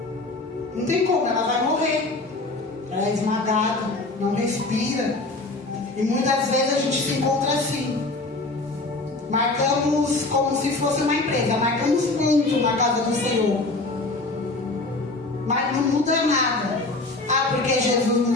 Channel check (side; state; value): right; quieter; 3.1 dB